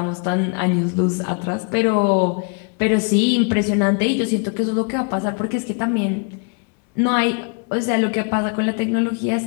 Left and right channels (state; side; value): quieter; right; 35.4 dB